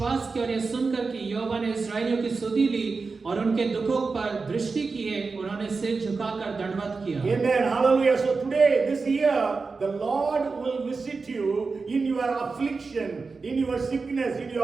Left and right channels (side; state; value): left; quieter; 4.4 dB